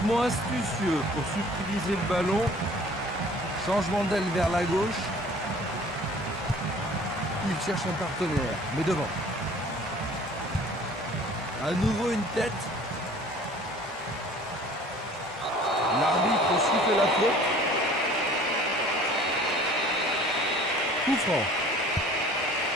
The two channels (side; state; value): both; normal; correlation 0.49